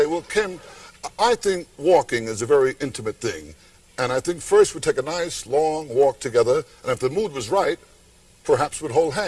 well, Kim, I think walking is a very intimate thing. And I think first we'd take a nice, long walk together, and if the mood was right, perhaps we'd hold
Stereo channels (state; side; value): identical; both; correlation 1.00